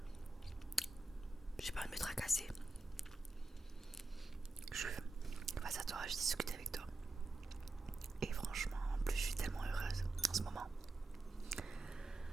j'ai pas envie de me tracasser. Je suis face à toi, je discute avec toi. Et franchement, en plus, je suis tellement heureuse en ce moment.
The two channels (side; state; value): left; quieter; 3.1 dB